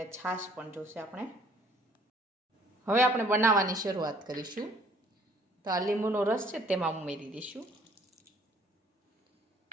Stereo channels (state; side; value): normal; both; correlation 0.59